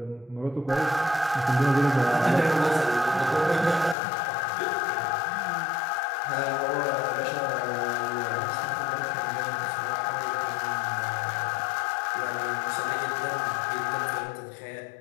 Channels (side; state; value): right; drops out; at 4.0 s